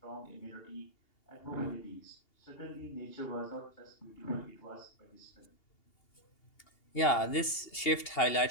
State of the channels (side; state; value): right; late; 2.8 ms